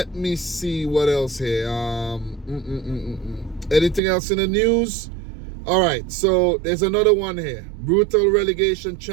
me see what else here. Anything else in the news? All right, so there's another one here. Brutal relegation,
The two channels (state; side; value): drops out; left; at 4.0 s